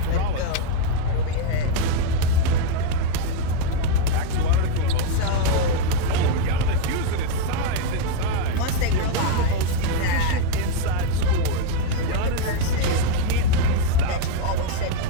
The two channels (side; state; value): both; different; correlation 0.01